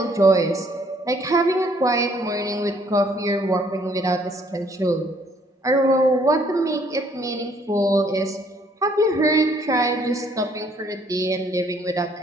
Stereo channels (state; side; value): normal; both; correlation 0.64